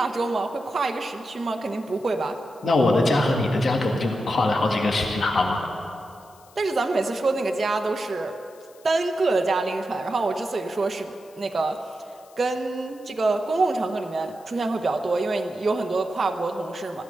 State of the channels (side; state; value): left; noise; hiss, 27 dB below the sound